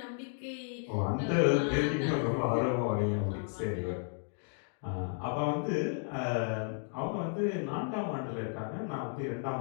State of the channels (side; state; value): right; silent; 56 dB below the other